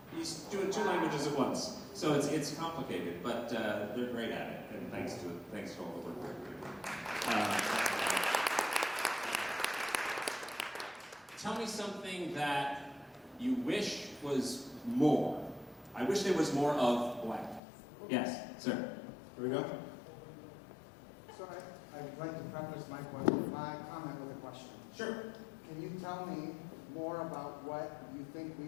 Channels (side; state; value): right; drops out; at 17.6 s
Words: he's doing 2 languages at once. So it's complicated, but they're great at it, and thanks to all the work they're doing. Tell me something that you wish was more. I wish there was more of blank. Yes, sir. Here we go. So I'd like to preface my comment with a question. Sure. Can you tell me more about what you think